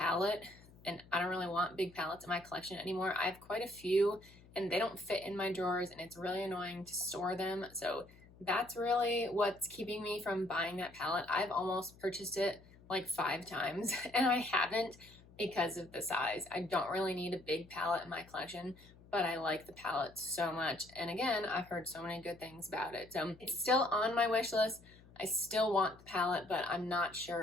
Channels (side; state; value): left; noise; hum, 23 dB below the sound